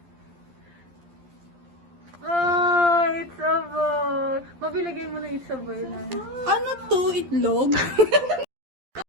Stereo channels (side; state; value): left; late; 12 ms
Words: Oh, it's a boy. Mabiligay mo na it's a boy na. Ano to? Itlog?